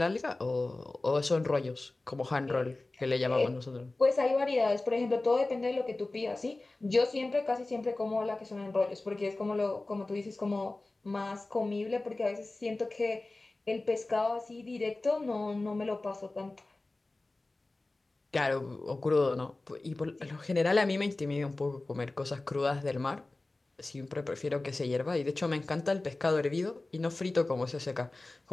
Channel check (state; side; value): quieter; right; 3.0 dB